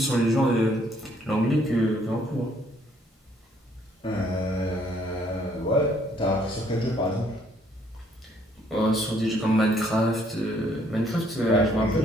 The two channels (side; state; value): both; normal; correlation 0.66